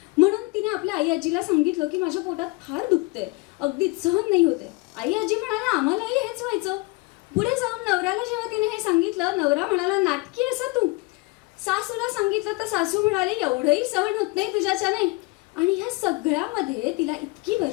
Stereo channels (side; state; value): right; quieter; 25.2 dB